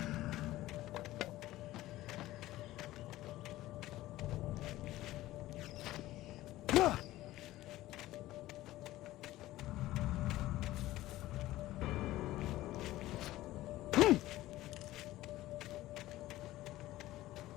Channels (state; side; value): quieter; right; 16.2 dB